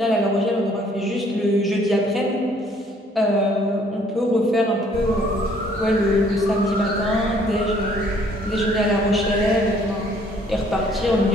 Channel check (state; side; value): normal; both; correlation 0.61